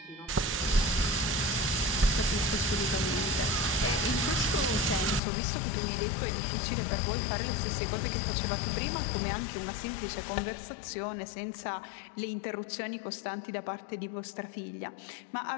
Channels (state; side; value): drops out; right; at 5.2 s